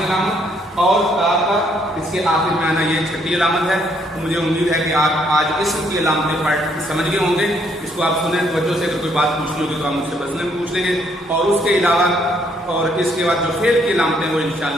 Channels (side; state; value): both; normal; correlation 0.69